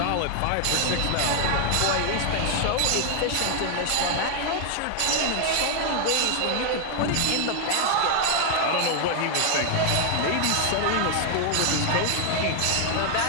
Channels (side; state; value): both; different; correlation 0.00